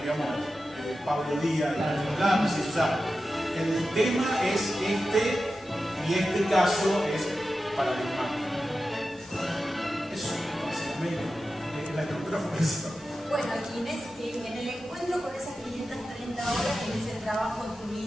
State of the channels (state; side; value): normal; both; correlation 0.92